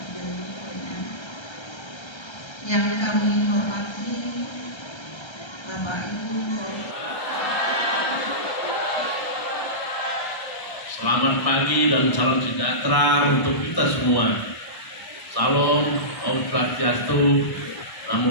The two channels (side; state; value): right; late; 1.3 ms